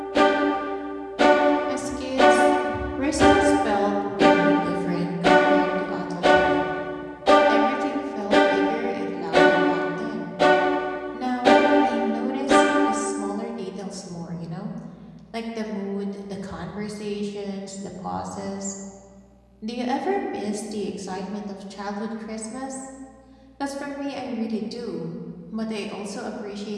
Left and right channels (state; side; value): identical; both; correlation 1.00